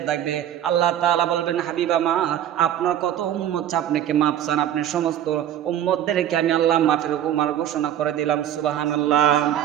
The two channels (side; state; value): left; quieter; 11.0 dB